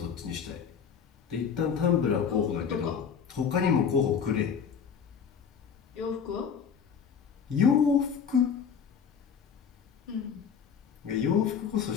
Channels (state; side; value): quieter; right; 7.0 dB